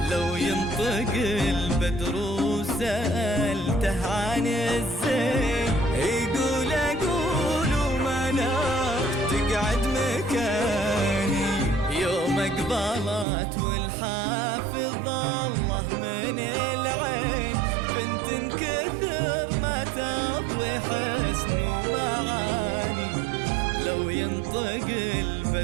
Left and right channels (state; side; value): drops out; left; at 13.2 s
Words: لو ينطق البدر وسألته عن الزين، يقول أقول ومنار تقعد مكاني. يوم اقبلت والحافظ الله من العين، بنت كثر ما تضوي حسن ومعاني. لو ينطق